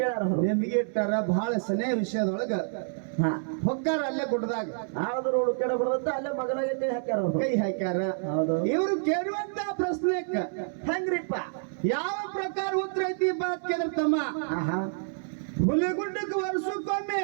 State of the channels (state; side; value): silent; left; 59 dB below the other